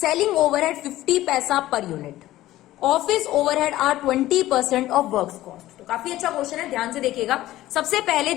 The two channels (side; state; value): right; quieter; 15.4 dB